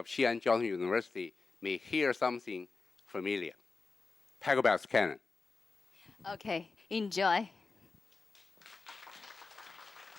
Xi'an Jiao Tong University may hear something familiar. Paragraphs canon. okay, enjoy.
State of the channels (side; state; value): right; quieter; 4.2 dB